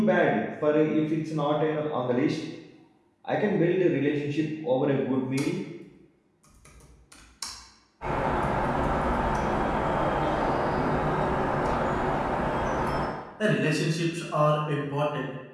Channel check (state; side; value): identical; both; correlation 1.00